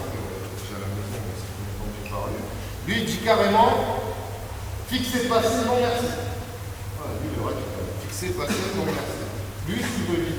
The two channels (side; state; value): both; identical; correlation 1.00